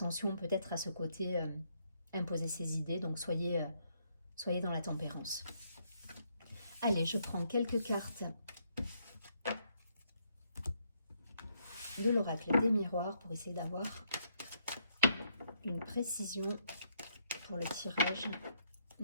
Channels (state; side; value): inverted; both; correlation -0.73